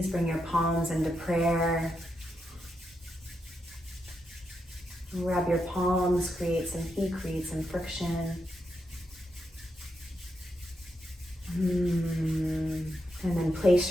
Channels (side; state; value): both; normal; correlation 0.84